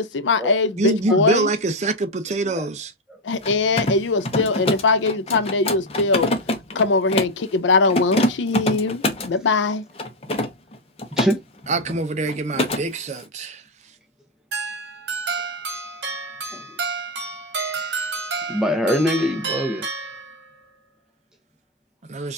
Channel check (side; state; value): both; normal; correlation 0.06